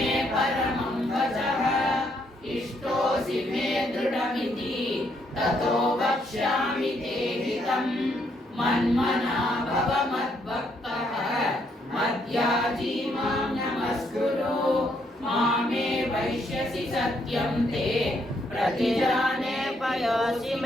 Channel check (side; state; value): both; normal; correlation 0.73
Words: परमं वचः इष्टोऽसि मे दृढमिति ततो वक्ष्यामि ते हितम् मन्मना भव मद्भक्तः मद्याजी मां नमस्कुरु मामे वैष्यसि सत्यं ते प्रतिजाने पयोसि